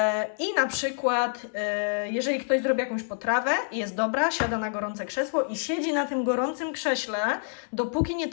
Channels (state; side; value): silent; right; digital silence